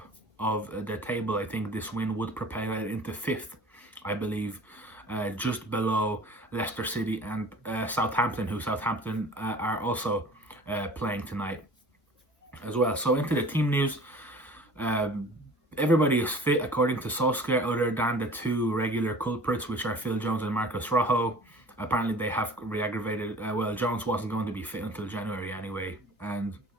of the table. I think this win would propel United into 5th, I believe, just below Leicester City and Southampton, who are also playing tonight as well. So into the team news, everybody is fit according to Solskjaer, other than the 2 regular culprits, which are Phil Jones and Marcus Rojo. Apparently they have re-aggravated, Jones wasn't going to be fit until January anyway, and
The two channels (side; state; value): both; normal; correlation 0.44